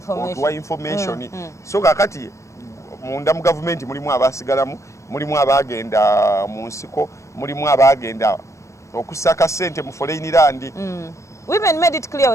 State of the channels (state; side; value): late; right; 0.15 ms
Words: information. So kakati munda mu government mulimu abasigalamu, mulimu abagenda mu nsiko, mulimu abagenda okusaka sente mu foreign land. Women made it clear